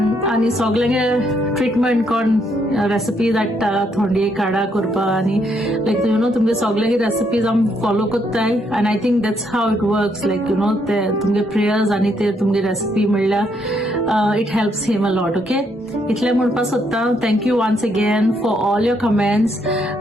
आणि सगळ्यांगे ट्रिटमेंट कोण रेसिपी धाडटा थोंडी काडा करपा आणि लायक तुमगे सगळ्यांगे रेसिपीज आम फॉलो कोत्ताय and I think that's how it works like ते तुमगे प्रेयर्स आणि ते तुमगे रेसिपी म्हणल्यार it helps him a lot okay इतले म्हणपा सोदता thank you once again for all your comments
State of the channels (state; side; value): normal; both; correlation 0.74